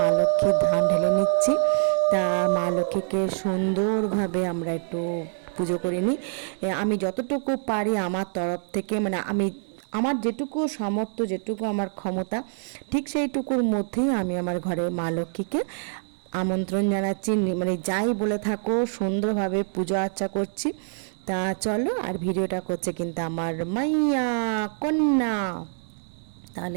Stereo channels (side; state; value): left; silent; digital silence